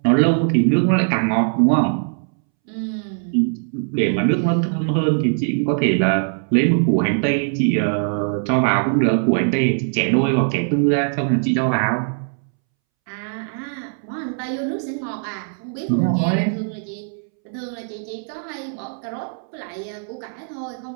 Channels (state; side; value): silent; left; 65 dB below the other